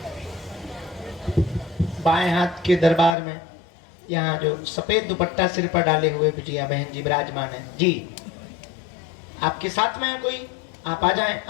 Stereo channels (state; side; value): drops out; right; at 3.2 s